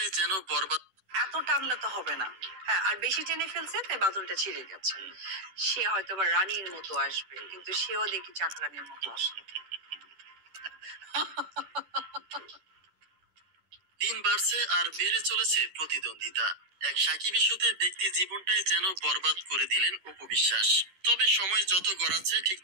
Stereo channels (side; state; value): left; late; 10 ms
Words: যেন বরবাদ। এত টানলে তো হবে না। হ্যাঁ, আর বেশি টেনে ফেলছে তাই বাদলটা ছিঁড়ে গেছে। সে হয়তো বা রানীর মতো আসবে, কিন্তু সেও দেখি চাকরানির মতো আসবে। দিন বাড়ছে আর বেড়ে চলেছে প্রতিদ্বন্দ্বিতা, এক সাকিব ইস্যুতে ব্যক্তি জীবনটাই যেন বরবাদ করে দিলেন অপু বিশ্বাস। তবে সময় যত গড়াচ্ছে ঠিক